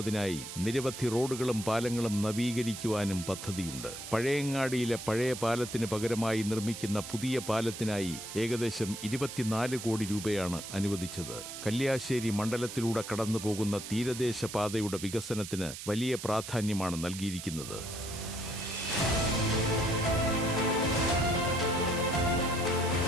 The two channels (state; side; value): noise; right; hiss, 10 dB below the sound